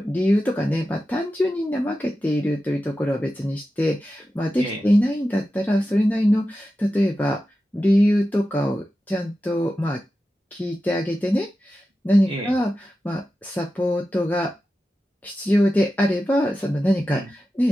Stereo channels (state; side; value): normal; both; correlation 0.92